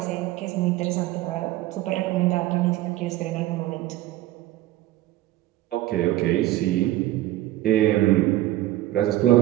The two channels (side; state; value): left; quieter; 15.5 dB